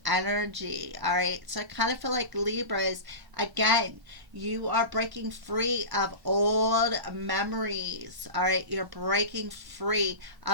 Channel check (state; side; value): late; left; 1.0 ms